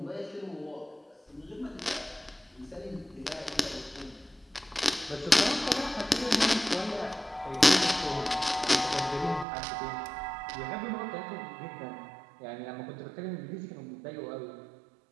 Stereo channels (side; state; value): left; drops out; at 9.5 s